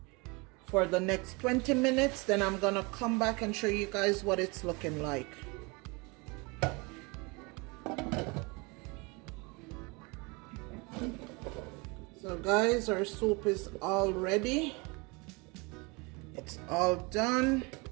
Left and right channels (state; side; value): quieter; left; 28.1 dB